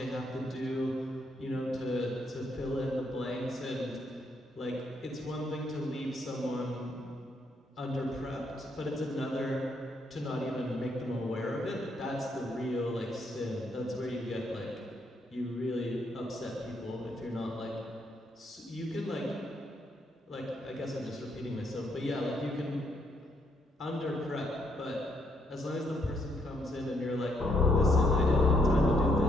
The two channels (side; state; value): both; normal; correlation 0.73